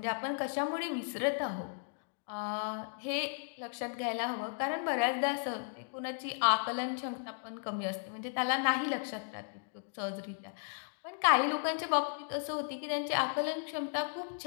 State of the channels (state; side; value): silent; right; digital silence